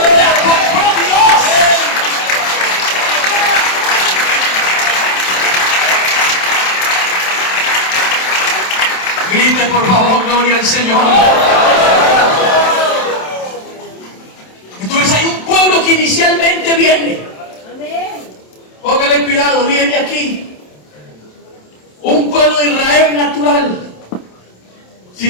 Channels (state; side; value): late; right; 27 ms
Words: compró Dios. Grite por favor, gloria al Señor. Entonces hay un pueblo que inicialmente viene. Póngale cuidado, viene aquí. Un pueblo de Israel natural.